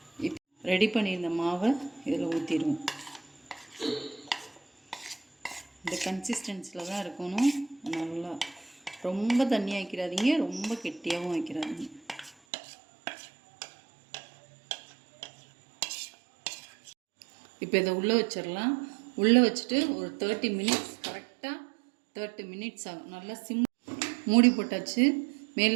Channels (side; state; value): left; drops out; at 12.3 s